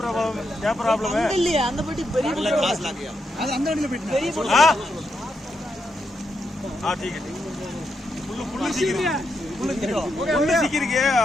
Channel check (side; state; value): both; normal; correlation 0.82